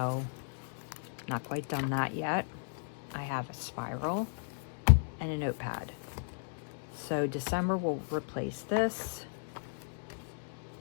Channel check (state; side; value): silent; right; digital silence